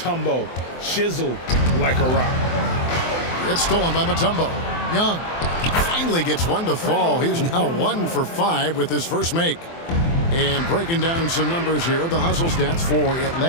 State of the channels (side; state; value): right; late; 24 ms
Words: chiseled like a rock. It's stolen by Mutombo. Young finally gets one to fall. He's now 1 for 5 with his first make. And breaking down some numbers here, the hustle stats for